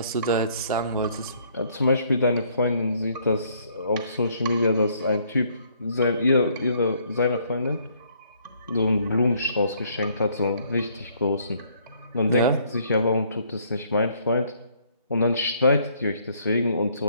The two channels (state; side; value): inverted; both; correlation -0.65